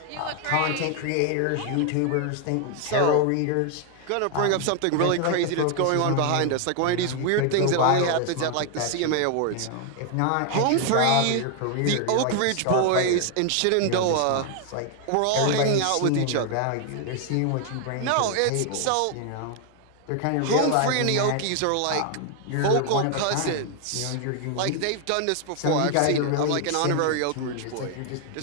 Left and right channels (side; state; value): both; different; correlation 0.00